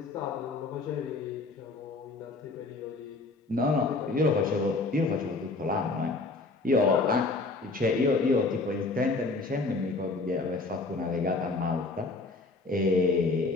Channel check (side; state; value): right; quieter; 3.5 dB